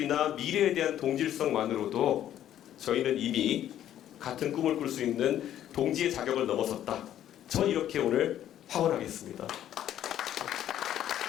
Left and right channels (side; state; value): right; quieter; 11.4 dB